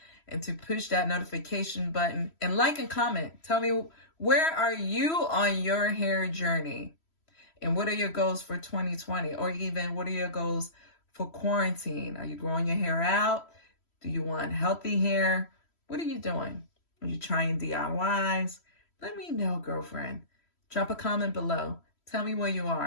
and to push that notification button and like and comment. Tell me, where are you on your hair journey? And what are your goals for 2020? Or even what are your goals for quarantine? Are you growing your hair out? Do you want healthy hair? What are you doing? Are you trying DIYs? Let me know, girlfriend. Drop a comment below. Tell me where you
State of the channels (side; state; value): right; late; 3.1 ms